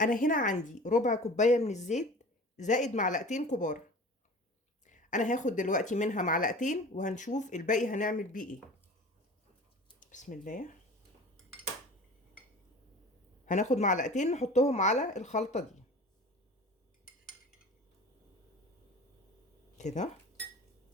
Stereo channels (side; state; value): both; normal; correlation 0.40